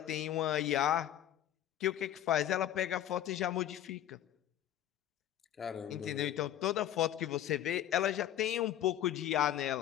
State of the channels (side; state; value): right; quieter; 11.6 dB